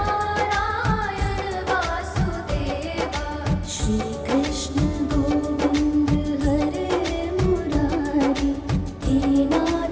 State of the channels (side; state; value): both; identical; correlation 1.00